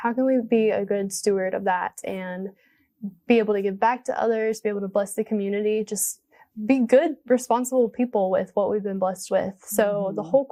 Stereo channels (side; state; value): both; identical; correlation 1.00